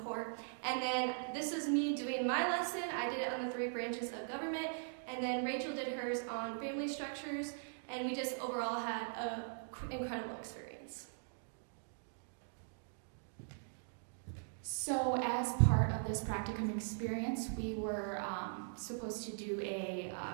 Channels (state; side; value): silent; left; digital silence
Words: And then this was me doing my lesson. I did it on the 3 branches of government, and then Rachel did hers on family structures, and we just overall had an incredible experience. So as part of this practicum experience, we were supposed to do a